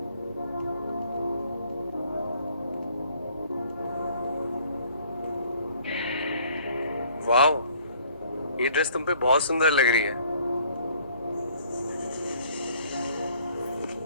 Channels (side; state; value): both; inverted; correlation -0.59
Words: वाओ, ये ड्रेस तुम पे बहुत सुंदर लग रही है।